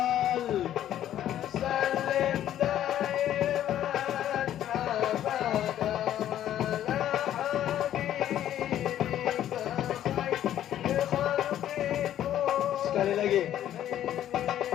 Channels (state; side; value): quieter; right; 11.5 dB